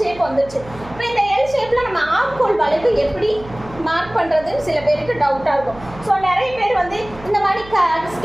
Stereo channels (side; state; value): right; noise; hum, 18 dB below the sound